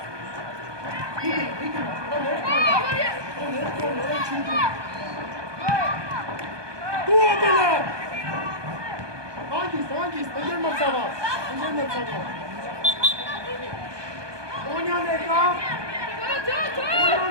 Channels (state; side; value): late; left; 1.2 ms